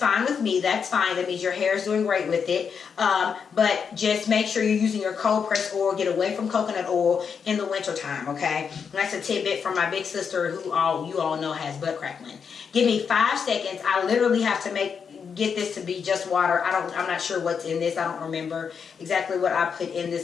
with me. That's fine. That means your hair is doing great with it. But just make sure you're using your cold pressed oil. Get away from coconut oil in the winter time, okay? And that's a tidbit from my big sister who you all know has butt crackling. Give me 5 seconds. I literally have to get this to be just water. I'm not sure what's in this. I don't remember exactly what I put in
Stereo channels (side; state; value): right; quieter; 6.5 dB